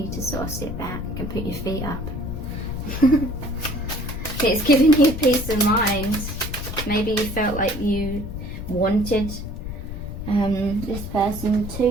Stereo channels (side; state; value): left; noise; rumble, 8 dB below the sound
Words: to sort of sit back and put your feet up. It's giving you peace of mind. Maybe you felt like you wanted this person